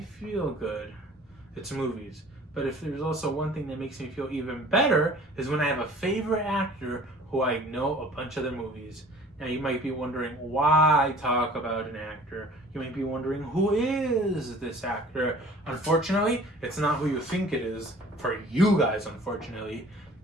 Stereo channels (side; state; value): both; normal; correlation 0.49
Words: feel good, it's movies. But if there's also one thing that makes me feel even better, is when I have a favorite actor who I know a bunch of their movies. Now you might be wondering why I talk about an actor. You might be wondering, who is this actor? Unfortunately, it's not who you think it is, for you guys, unfortunately.